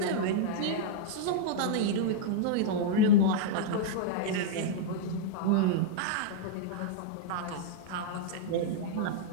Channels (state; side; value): different; both; correlation -0.02